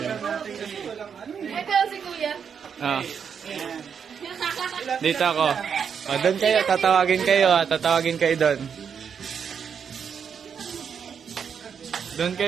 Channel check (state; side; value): quieter; left; 7.0 dB